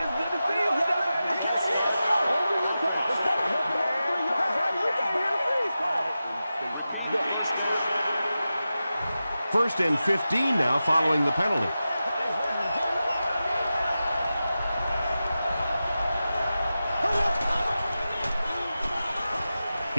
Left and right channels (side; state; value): both; inverted; correlation -0.93